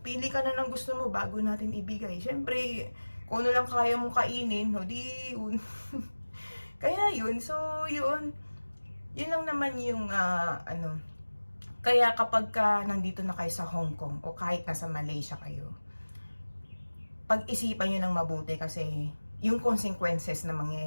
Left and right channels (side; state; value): both; inverted; correlation -1.00